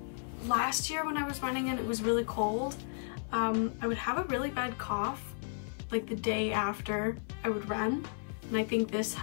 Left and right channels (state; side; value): silent; right; 55 dB below the other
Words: last year when I was running and it was really cold, I would have a really bad cough like the day after I would run. And I think this